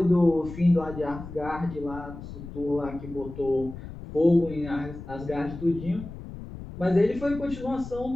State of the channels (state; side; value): noise; left; rumble, 12 dB below the sound